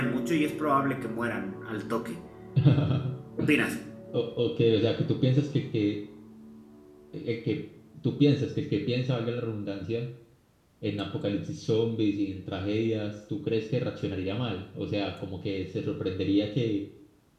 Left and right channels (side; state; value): both; identical; correlation 1.00